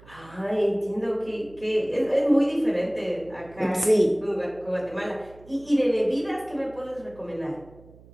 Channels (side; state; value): right; noise; hum, 23 dB below the sound